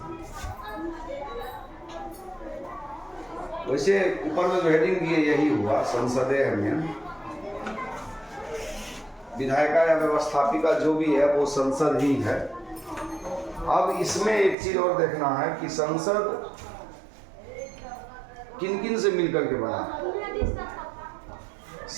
वैसे ऊपर में जो हेडिंग दिए यही हुआ, संसदीय है मेन। विधायिका या व्यवस्थापिका जो भी है वो संसद ही है। अब इसमें एक चीज और देखना है कि संसद किन किन से मिलकर के बना।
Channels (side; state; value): left; drops out; at 14.6 s